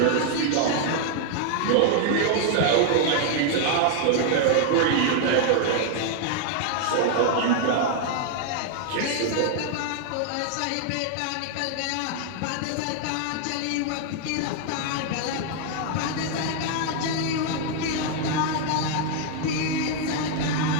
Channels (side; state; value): both; different; correlation 0.00